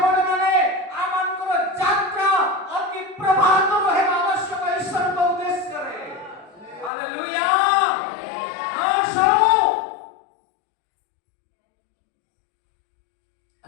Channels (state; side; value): drops out; right; at 6.9 s